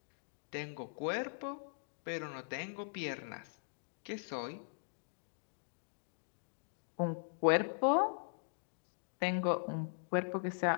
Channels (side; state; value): right; silent; digital silence